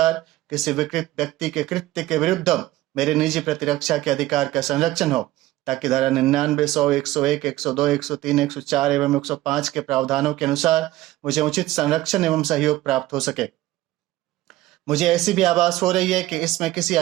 किसी विकृत व्यक्ति के कृत्य के विरुद्ध मेरे निजी प्रतिरक्षा के अधिकार का संरक्षण हो, ताकि धारा 99, 100, 101, 102, 103, 104 एवं 105 के प्रावधानों के अनुसार मुझे उचित संरक्षण एवं सहयोग प्राप्त हो सके। मुझे ऐसी भी आभास हो रही है कि इसमें किसी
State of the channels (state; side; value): quieter; left; 16.5 dB